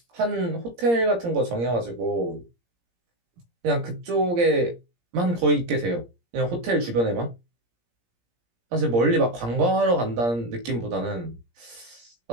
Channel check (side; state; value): left; late; 17 ms